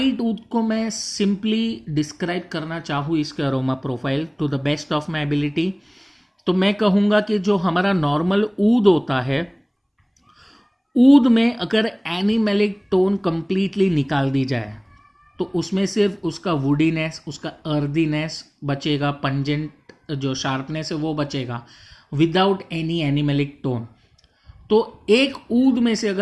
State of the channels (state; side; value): identical; both; correlation 1.00